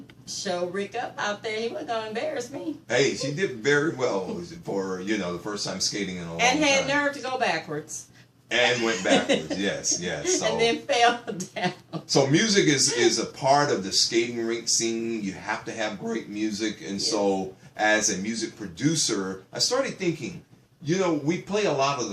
show Rick up out there. He wasn't going to embarrass me. Hey, she did very well for the first time skating in a long time. And had nerve to go backwards. And went backwards, yes. So, and then fell down. So music is a part of the skating rink scene. You have to have great music. And so as a music producer, I started thinking, we play a lot of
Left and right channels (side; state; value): both; identical; correlation 1.00